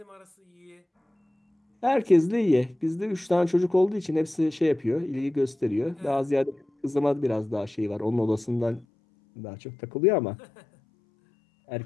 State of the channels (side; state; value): right; drops out; at 8.8 s